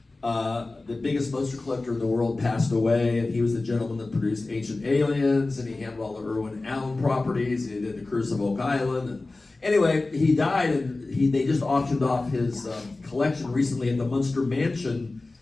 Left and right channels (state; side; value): quieter; right; 3.3 dB